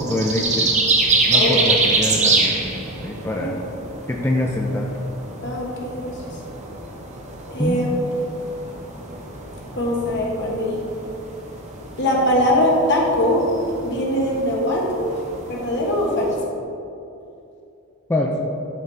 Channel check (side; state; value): both; normal; correlation 0.17